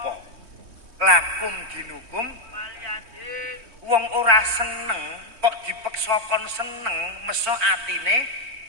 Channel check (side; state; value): left; late; 3.2 ms